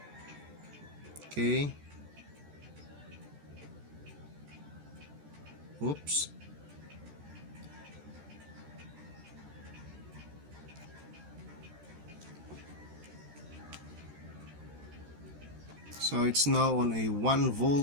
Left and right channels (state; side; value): late; left; 13 ms